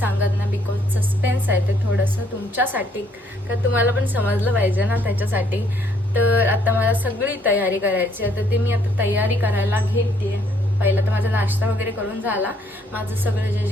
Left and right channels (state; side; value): normal; both; correlation 0.67